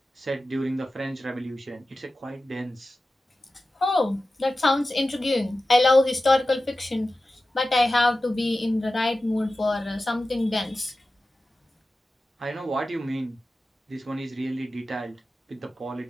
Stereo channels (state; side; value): normal; both; correlation 0.94